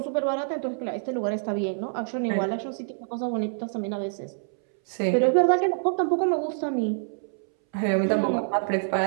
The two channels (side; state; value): left; silent; 61 dB below the other